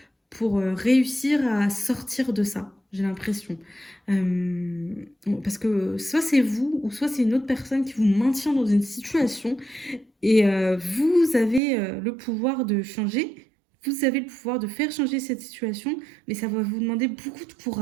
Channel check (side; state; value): left; drops out; at 11.6 s